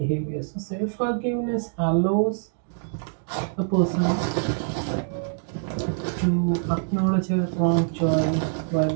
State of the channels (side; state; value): left; silent; digital silence